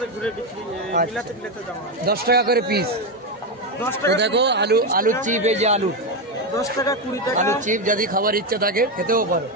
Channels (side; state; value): both; normal; correlation 0.09